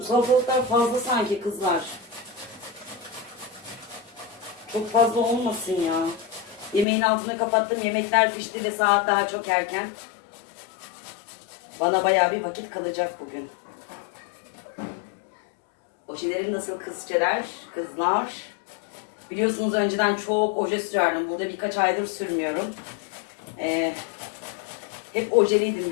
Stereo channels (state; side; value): drops out; right; at 6.9 s